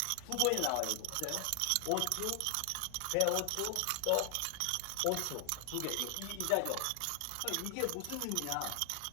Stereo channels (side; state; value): both; different; correlation 0.00